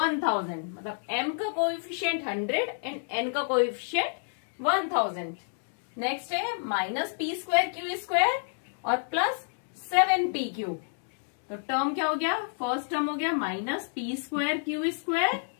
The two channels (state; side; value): silent; right; digital silence